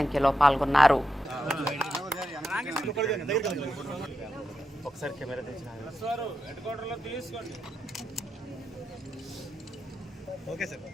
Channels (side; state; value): both; normal; correlation 0.86